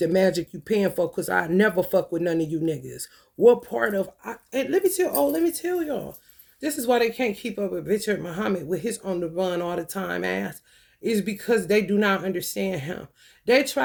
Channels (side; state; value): both; identical; correlation 1.00